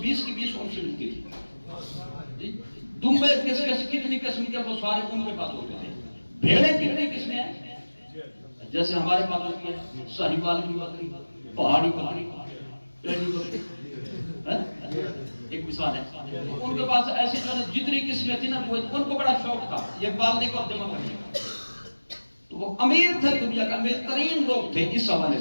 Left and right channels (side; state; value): both; inverted; correlation -1.00